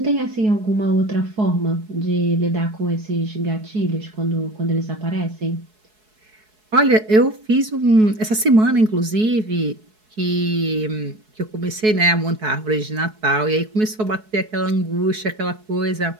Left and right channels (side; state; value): left; late; 4.7 ms